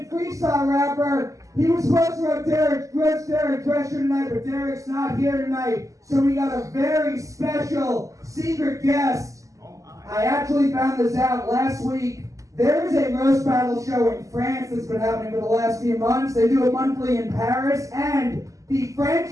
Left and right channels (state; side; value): late; left; 0.16 ms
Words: freestyle rapper. He was supposed to have Derick dress here tonight, but Derick's not here tonight. So we got a very special secret guest. I actually found this out last week. There is a roast battle show in France that's been happening for the last few months. They do it monthly in Paris, and the